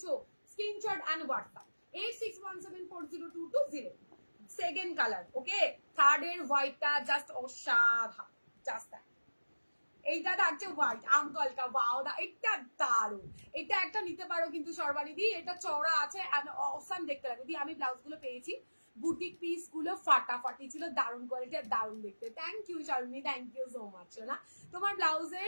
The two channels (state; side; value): inverted; both; correlation -1.00